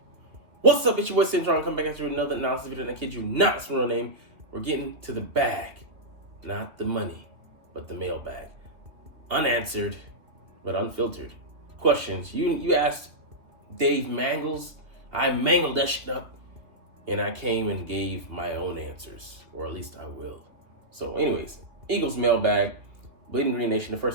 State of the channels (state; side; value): late; left; 2.5 ms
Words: What's up, it's your boy Cintron. Come back after another analysis video, and I kid you not, it's my real name. We're getting to the bag. Not the money, but the mailbag. Unanswered, but unfiltered questions. You asked Dave Mangles. I mangled that shit up, and I came and gave my own answers, or at least I will. So anyways, Eagles mailbag, Bleeding Green Nation, the